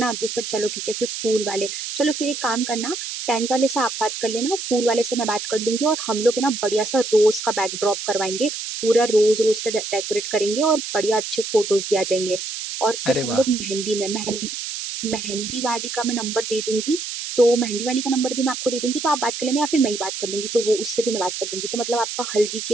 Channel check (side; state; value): right; noise; hiss, 6 dB below the sound